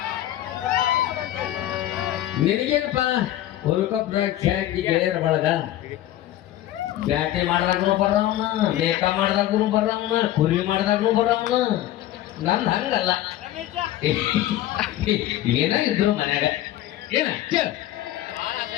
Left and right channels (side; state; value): right; quieter; 13.7 dB